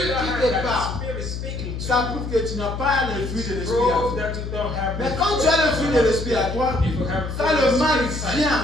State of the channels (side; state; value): left; noise; hum, 6 dB below the sound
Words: don't qui have te that parle, spirit speaking to ça you, prouve que tu n'as pas le fruit de l'esprit à prove toi. that you don't have Mais the quand fruit tu as le of fruit the de Holy l'esprit à Spirit. toi, If you have quand fruit le of the mal Spirit vient